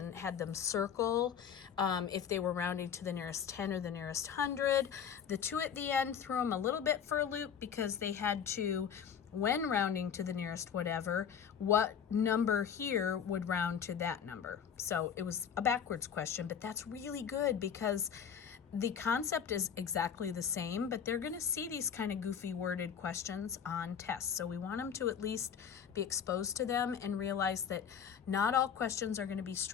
had them circle if they were rounding to the nearest 10 or the nearest 100. The 2 at the end threw them a little bit for a loop because they had to, when rounding to the nearest whatever, what number here would round to that number. So it was a backwards question, but that's really good because the concept is exactly the same, but they're going to see these kind of goofy worded questions on tests. So we want them to at least be exposed to them and realize that not all questions are going to be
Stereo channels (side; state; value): right; quieter; 7.8 dB